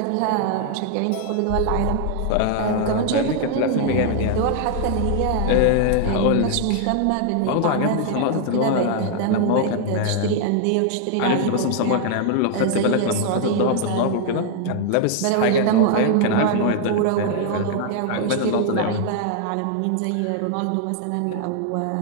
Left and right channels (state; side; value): different; both; correlation 0.00